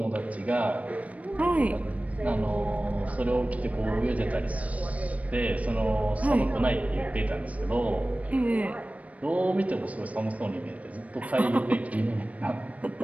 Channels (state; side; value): late; left; 0.068 ms